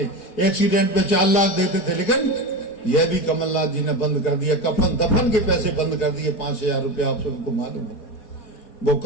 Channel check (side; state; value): right; late; 4.7 ms